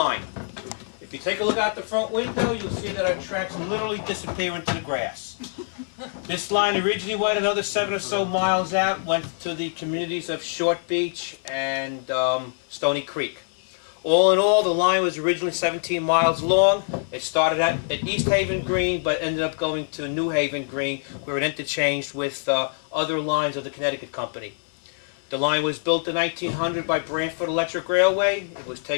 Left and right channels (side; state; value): right; silent; 62 dB below the other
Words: If you take a look out the front window, you'll see that our tracks literally disappear into the grass. This line originally went another 7 or so miles out, went to the communities of Short Beach and Stony Creek. All in all, the line was originally 17 miles long. It started at East Haven Green, but ended up going to New Haven Green, where it interchanged with other lines of the Connecticut Company. The line was built in 1900 by Branford Electric Railway. It was